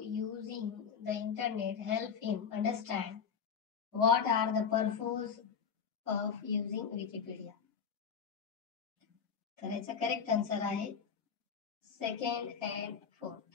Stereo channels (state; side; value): quieter; right; 6.7 dB